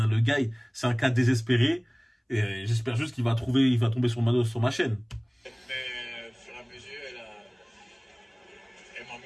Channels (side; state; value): both; identical; correlation 1.00